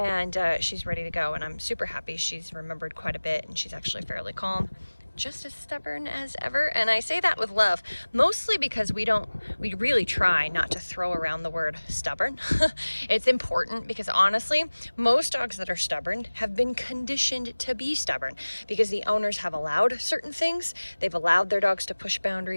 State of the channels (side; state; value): both; inverted; correlation -1.00